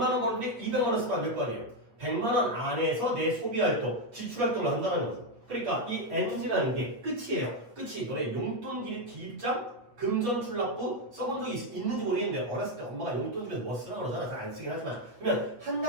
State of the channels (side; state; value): left; late; 8.5 ms